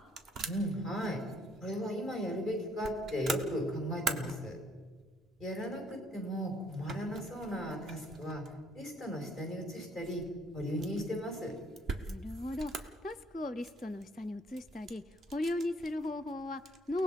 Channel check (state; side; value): normal; both; correlation 0.65